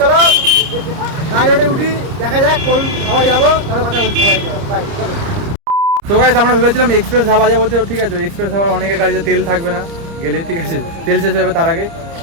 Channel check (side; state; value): left; late; 30 ms